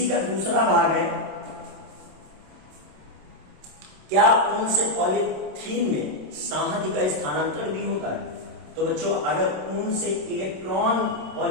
का दूसरा भाग है, क्या ऊन से पॉलीथीन में संहति का स्थानांतरण भी होता है। तो बच्चों, अगर ऊन से इलेक्ट्रॉन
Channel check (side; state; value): left; late; 27 ms